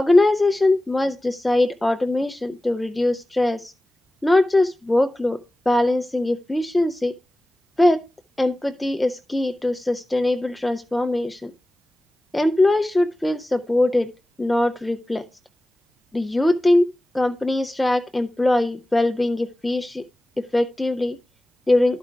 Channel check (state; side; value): normal; both; correlation 0.96